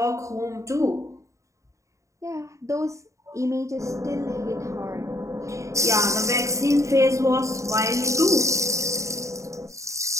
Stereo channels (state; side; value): late; left; 0.15 ms